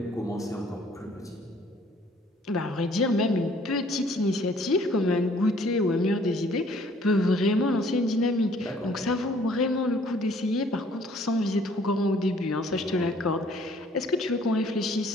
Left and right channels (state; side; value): normal; both; correlation 0.59